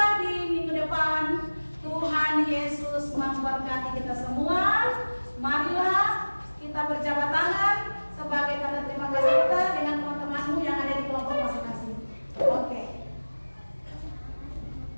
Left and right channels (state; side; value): inverted; both; correlation -1.00